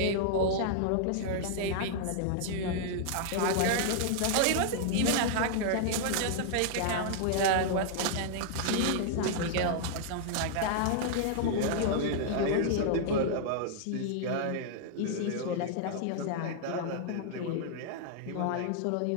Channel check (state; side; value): different; both; correlation -0.01